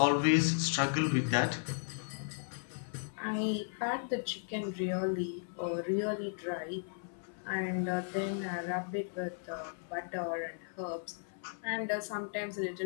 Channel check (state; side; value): silent; right; 54 dB below the other